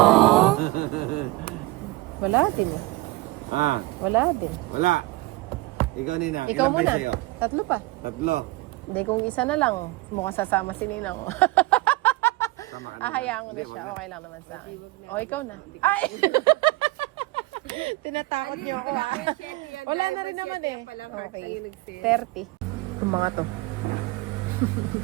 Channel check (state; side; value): quieter; left; 21.1 dB